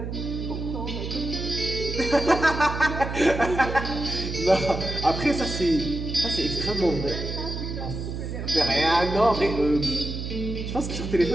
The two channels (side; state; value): right; noise; hum, 5 dB below the sound